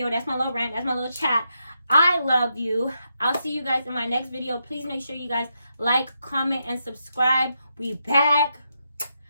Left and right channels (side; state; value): both; inverted; correlation -0.82